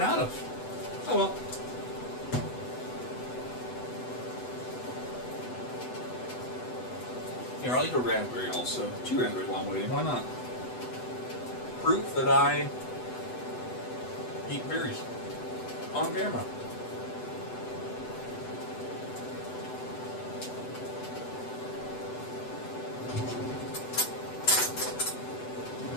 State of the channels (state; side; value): late; right; 8.0 ms